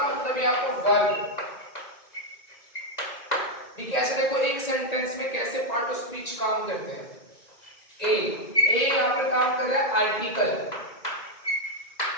मतलब यहाँ पर वर्ब। ठीक है, ऐसे देखो एक सेंटेंस में कैसे पार्ट ऑफ स्पीच काम करते हैं। ए यहाँ पर काम कर रहा है आर्टिकल,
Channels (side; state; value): right; late; 2.0 ms